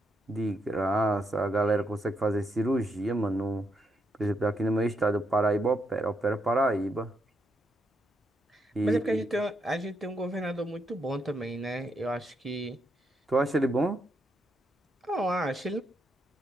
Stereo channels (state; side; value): normal; both; correlation 0.79